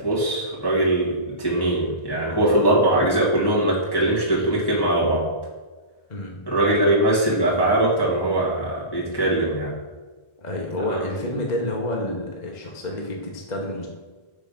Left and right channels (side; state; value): right; late; 1.1 ms